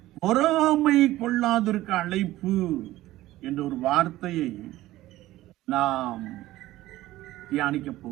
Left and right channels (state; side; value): quieter; left; 16.1 dB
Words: பொறாமை கொள்ளாதிருக்க அழைப்பு என்ற ஒரு வார்த்தையை நாம் தியானிக்க